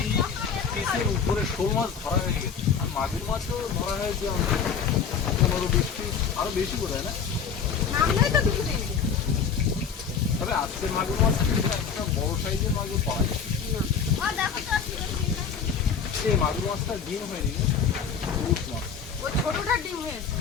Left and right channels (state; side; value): quieter; right; 6.5 dB